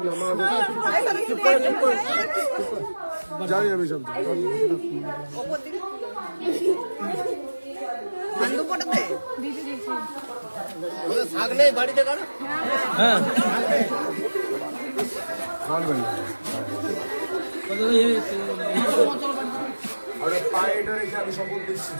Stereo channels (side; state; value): both; inverted; correlation -1.00